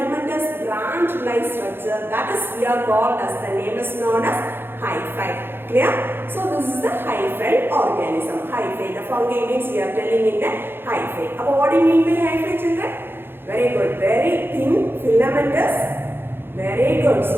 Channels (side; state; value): left; late; 0.10 ms